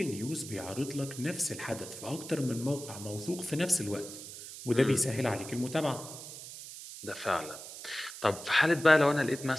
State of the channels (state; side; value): noise; right; hiss, 12 dB below the sound